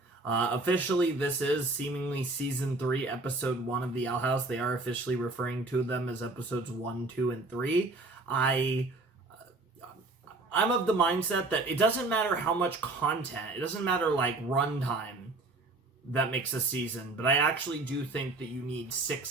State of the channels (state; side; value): quieter; left; 3.2 dB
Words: Officially, this is seemingly Season 3, Episode 1 of the Owl House. They are officially referring to them as Episodes 1, 2, and 3. I'm of the mindset that it doesn't matter how much content, it doesn't matter like runtime that makes a season, but I actually do think that you need